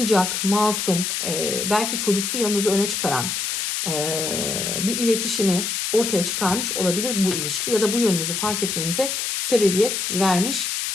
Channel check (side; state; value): left; noise; hiss, 1 dB below the sound